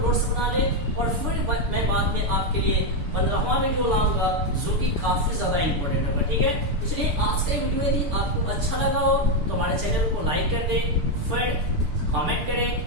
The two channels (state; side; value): late; left; 6.8 ms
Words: नोट्स बना ले और फिर मैं बाद में आपके लिए 15वां वीडियो लाऊंगा जो कि काफी ज्यादा इंपॉर्टेंट होगा, ठीक है। इसलिए आज का वीडियो यदि आपको अच्छा लगा हो तो हमारे चैनल को लाइक कर दे, फिर कमेंट